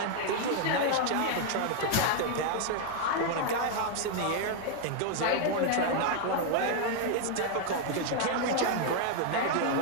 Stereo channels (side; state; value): both; different; correlation 0.00